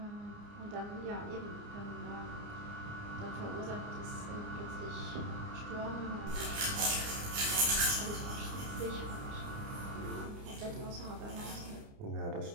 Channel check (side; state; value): left; late; 29 ms